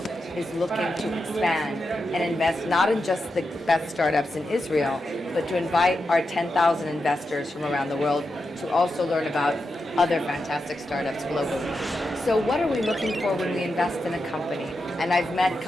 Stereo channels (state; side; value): normal; both; correlation 0.88